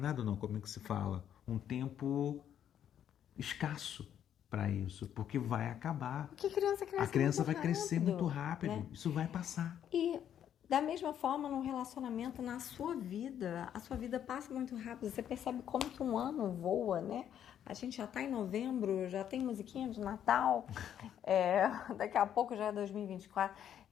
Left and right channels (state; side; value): quieter; right; 9.8 dB